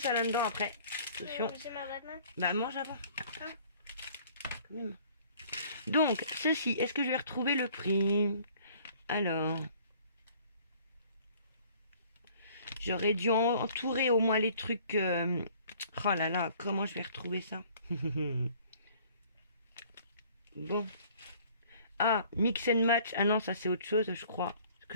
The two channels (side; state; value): both; inverted; correlation -0.55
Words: là-dedans après. Attention. Bah, mange avant. Quand même. Donc, ceci, est-ce que je vais retrouver le prix? Alors. J'aurais dû entourer au moins les trucs. Oh là là, comment je vais retrouver ça? Bon. Ah, mix and match. Ah non, ça c'est autre chose, je crois. Parce